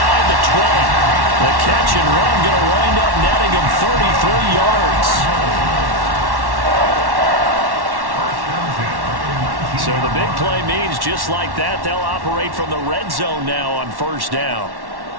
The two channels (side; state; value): left; late; 1.1 ms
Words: the 20. The catch and run going to wind up netting him 33 yards. So the big play means just like that, they'll operate from the red zone now on 1st down.